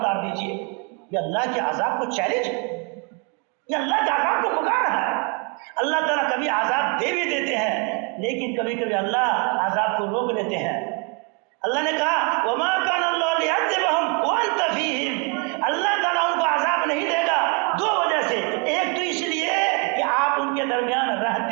دیجیے۔ یہ اللہ کے عذاب کو چیلنج، یہ اللہ کے عذاب کو پکار رہا ہے۔ اللہ تعالیٰ کبھی عذاب دے بھی دیتے ہیں، لیکن کبھی کبھی اللہ عذاب کو روک لیتے ہیں۔ اللہ نے کہا وما كان اللہ ليعذبهم وانت فيهم، اللہ تعالیٰ ان کو عذاب نہیں دے گا دو وجہ سے، ایک تو اس لیے کہ آپ ان کے درمیان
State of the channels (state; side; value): quieter; left; 34.2 dB